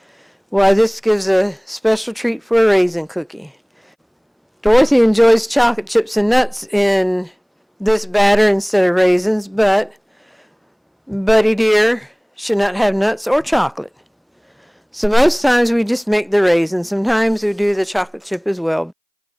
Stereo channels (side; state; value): both; identical; correlation 1.00